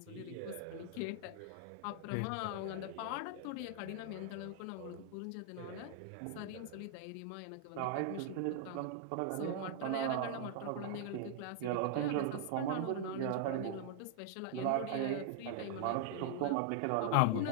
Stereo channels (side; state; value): both; different; correlation 0.00